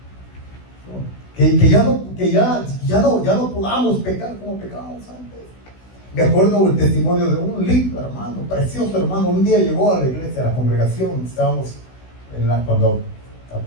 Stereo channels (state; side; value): late; right; 16 ms